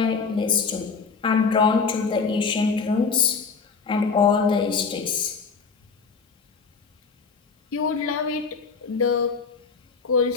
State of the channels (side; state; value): right; quieter; 5.1 dB